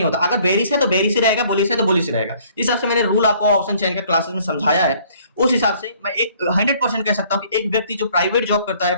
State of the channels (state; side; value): inverted; both; correlation -0.59